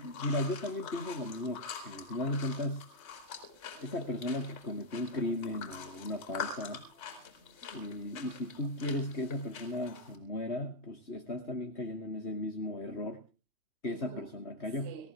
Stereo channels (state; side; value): late; right; 3.3 ms